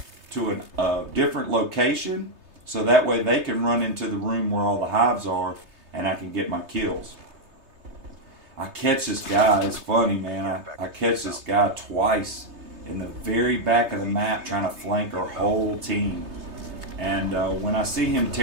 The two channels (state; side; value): late; left; 3.3 ms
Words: to a different location so that way they can run into the room where all the hives are and I can get my kills. I catch this guy, it's funny, man, I catch this guy twice in the very back of the map trying to flank our whole team. And when I see him